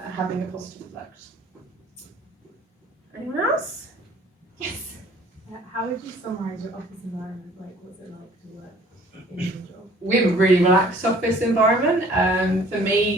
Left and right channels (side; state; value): both; normal; correlation 0.54